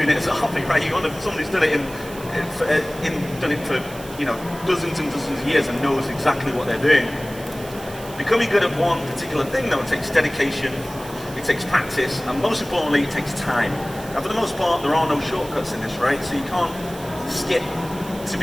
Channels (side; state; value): right; noise; hiss, 17 dB below the sound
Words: it as a hobby, right? You want someone who's done it for dozens and dozens of years and knows exactly what they're doing. Becoming good at one particular thing, though, it takes dedication, it takes practice, and most importantly, it takes time. Now, for the most part, there are no shortcuts in this, right? So you can't skip to